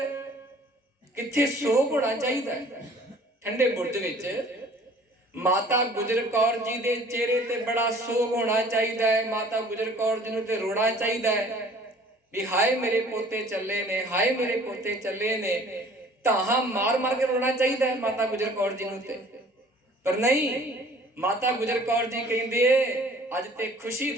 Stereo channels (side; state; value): both; normal; correlation 0.52